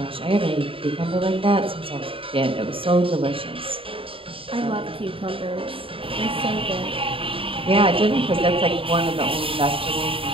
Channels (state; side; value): late; left; 0.26 ms